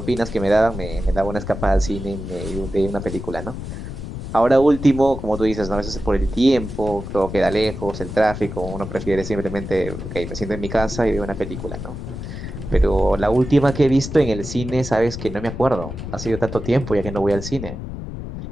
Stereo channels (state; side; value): noise; left; rumble, 8 dB below the sound